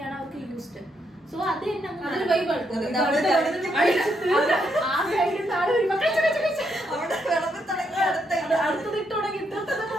അവർക്ക് യൂസ്ഡ്. സോ അത് തന്നെ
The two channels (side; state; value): both; normal; correlation 0.78